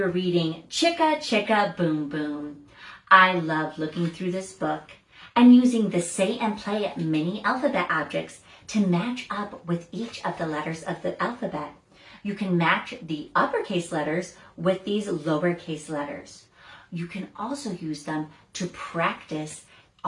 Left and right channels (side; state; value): both; identical; correlation 1.00